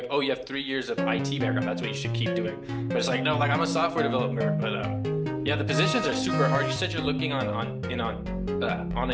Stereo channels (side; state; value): both; identical; correlation 1.00